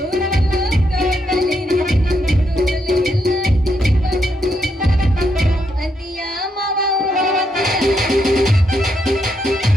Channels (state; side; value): normal; both; correlation 0.79